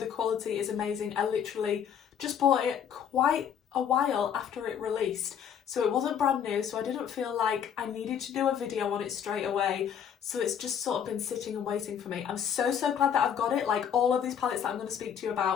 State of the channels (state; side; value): quieter; right; 8.3 dB